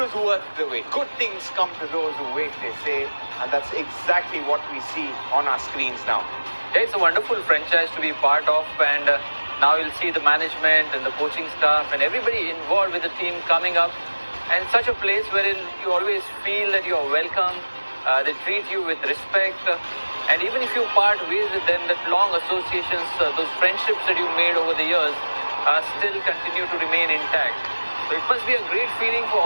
was worth the wait. Good things come to those who wait, they say. And that's exactly what we see on our screens now. Yeah, it's a wonderful franchise to be part of, and now you'll see the management and the coaching staff and everybody involved with the team coming up. And such a place wherein you always feel that you are welcome, they treat you with respect. And even if you part ways with them, that long associations, those friendships that you made over the years still continue to remain intact. So it must be a great feeling for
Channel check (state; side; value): inverted; both; correlation -1.00